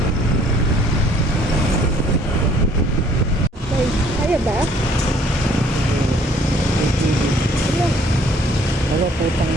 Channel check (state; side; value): normal; both; correlation 0.60